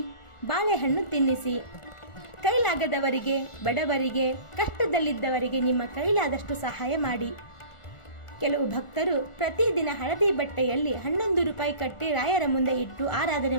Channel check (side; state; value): right; late; 1.4 ms